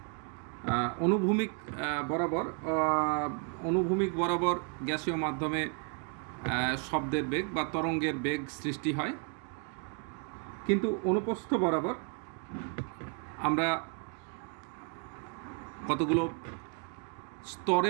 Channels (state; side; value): quieter; left; 35.4 dB